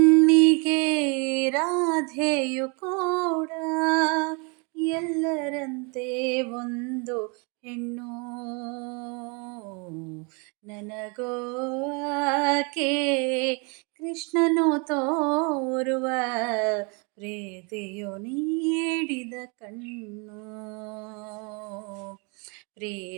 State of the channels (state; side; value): quieter; left; 32.9 dB